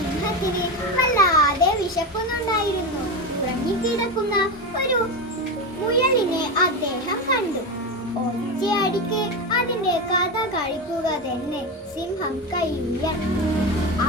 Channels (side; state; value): both; normal; correlation 0.18